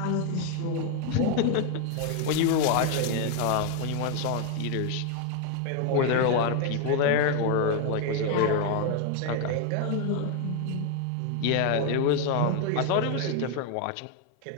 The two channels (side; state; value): both; different; correlation 0.00